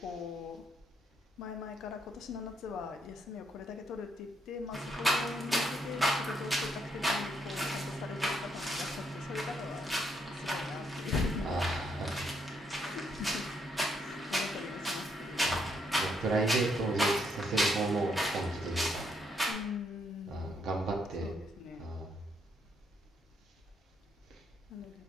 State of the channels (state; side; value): normal; both; correlation 0.75